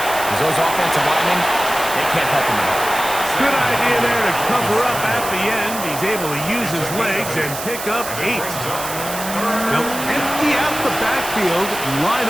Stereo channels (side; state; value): right; noise; hiss, 8 dB below the sound